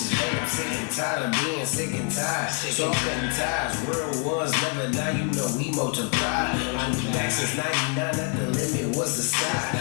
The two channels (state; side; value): quieter; right; 36.7 dB